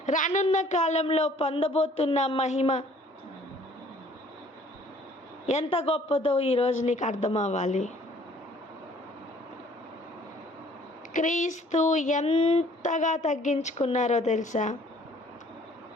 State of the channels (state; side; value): normal; both; correlation 0.57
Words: రానున్న కాలంలో పొందబోతున్న మహిమ ఎంత గొప్పదో ఈరోజు నీకు అర్థం అవ్వాలి. క్రీస్తు ఎంతగా తగ్గించుకున్నారో తెలుసా?